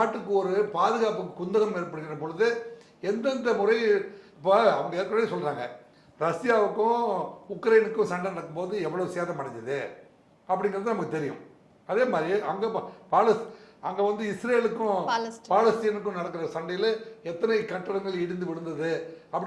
ஒரு பாதுகாப்பு குந்தகம் ஏற்படுகிற பொழுது எந்தெந்த முறை, இப்போ அவங்க ஏற்கனவே சொல்கிறாங்க, ரஷ்யாவுக்கும் உக்ரைனுக்கும் சண்டை நடக்கும்போது எவ்வளோ சேதம் அடைஞ்சது அப்படிங்கிறது நமக்கு தெரியும். அதே மாதிரி அங்கே வந்து இஸ்ரேலுக்கும் பாலஸ்தீனுக்கும் நடக்கிற சண்டையில் எத்தனை கட்டடங்கள் இடிந்து விழுந்தது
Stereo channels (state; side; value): identical; both; correlation 1.00